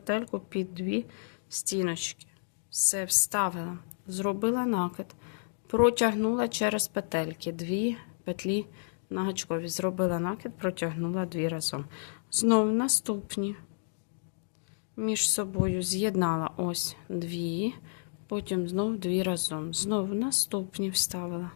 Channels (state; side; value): silent; right; digital silence